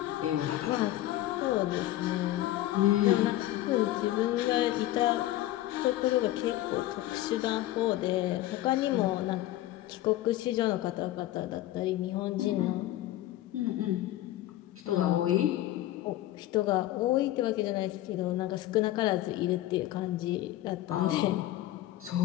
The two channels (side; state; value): right; quieter; 14.9 dB